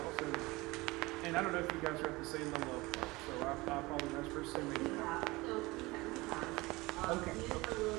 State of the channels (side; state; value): left; quieter; 22.0 dB